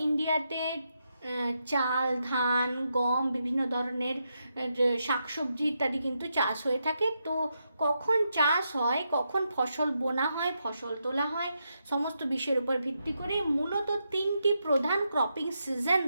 ইন্ডিয়াতে চাল, ধান, গম, বিভিন্ন ধরনের শাকসবজি ইত্যাদি কিন্তু চাষ হয়ে থাকে। তো কখন চাষ হয়, কখন ফসল বোনা হয়, ফসল তোলা হয়, সমস্ত বিষয়ের উপর ভিত্তি করে মূলত তিনটি প্রধান ক্রপিং সিজন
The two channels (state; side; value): inverted; both; correlation -0.83